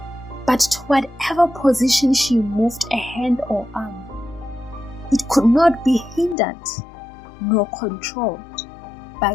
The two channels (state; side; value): drops out; right; at 6.4 s